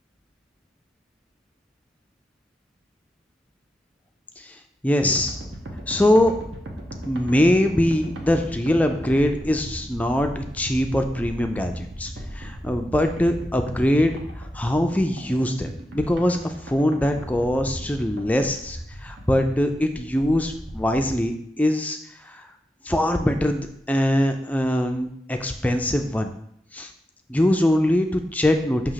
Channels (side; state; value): both; normal; correlation 0.87